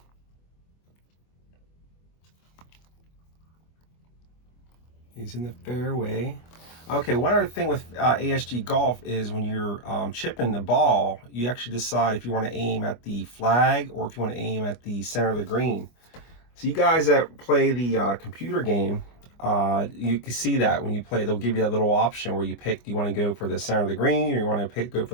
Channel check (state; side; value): late; right; 25 ms